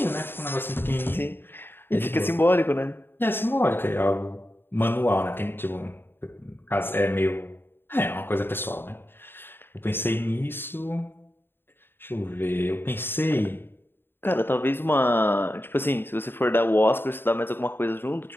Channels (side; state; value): right; late; 0.10 ms